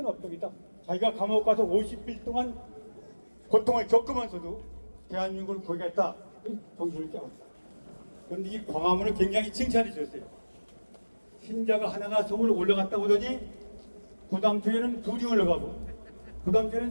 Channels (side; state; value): both; inverted; correlation -1.00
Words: 업적이다. 자기가 감옥 가서 50일 동안 고통을 겪으면서도 대한민국을 구하겠다. 정신을 깨웠다. 그런데 이 광화문을 굉장히 칭찬해 줬어요. 신자가 하나가 서울 올라갔다 오더니 그 다음 주에는 둘이 올라가고 그 다음